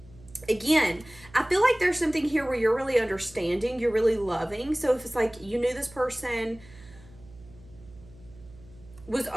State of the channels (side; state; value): right; noise; hum, 22 dB below the sound